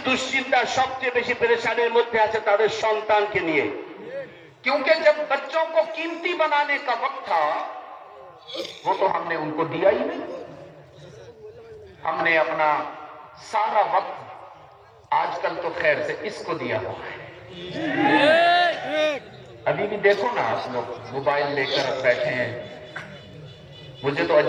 দুশ্চিন্তা সবচেয়ে বেশি পেরেশানির মধ্যে আছে তাদের সন্তানকে নিয়ে। کیونکہ جب بچوں کو قیمتی بنانے کا وقت تھا وہ تو ہم نے ان کو دیا ہی نہیں، ہم نے اپنا سارا وقت آج کل تو خیر سے اس کو دیا ہوا ہے۔ ابھی بھی دیکھو نا آپ لوگ موبائل لے کر بیٹھے ہیں، مجھے تو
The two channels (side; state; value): both; identical; correlation 1.00